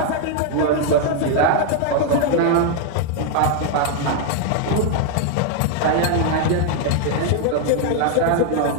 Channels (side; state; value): both; different; correlation 0.00